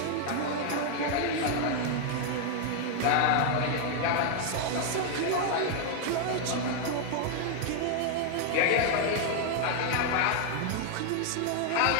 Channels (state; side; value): different; both; correlation 0.00